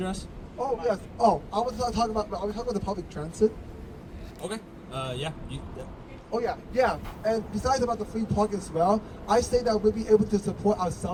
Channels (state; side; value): identical; both; correlation 1.00